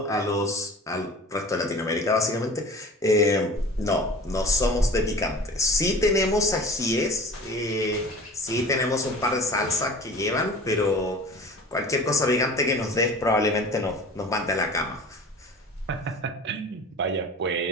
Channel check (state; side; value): normal; both; correlation 0.41